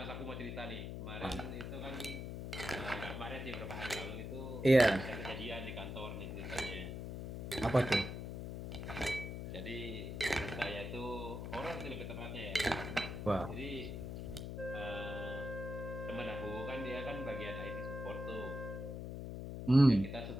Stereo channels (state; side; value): noise; left; hum, 6 dB below the sound